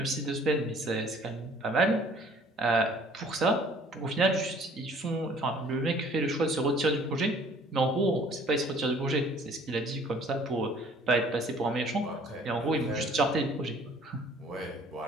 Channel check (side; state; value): both; normal; correlation 0.55